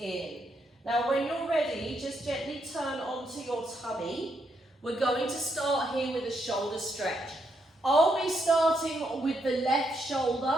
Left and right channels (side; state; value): both; normal; correlation 0.78